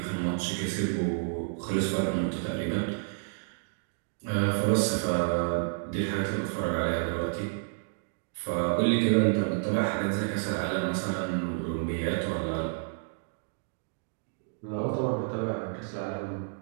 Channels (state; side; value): silent; left; digital silence